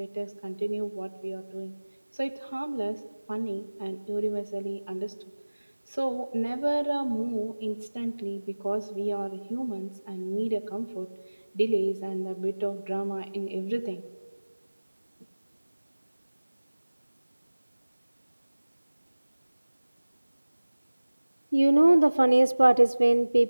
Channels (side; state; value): both; inverted; correlation -1.00